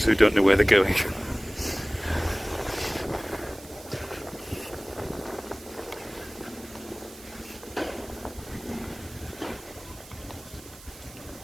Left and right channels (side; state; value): right; noise; hiss, 19 dB below the sound